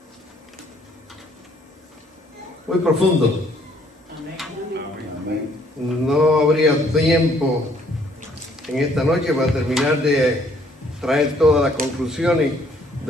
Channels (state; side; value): normal; both; correlation 0.64